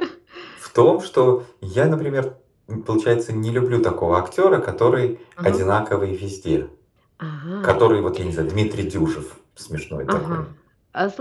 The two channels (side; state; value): both; identical; correlation 1.00